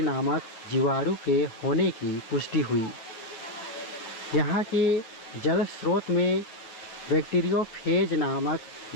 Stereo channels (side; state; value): right; late; 9.0 ms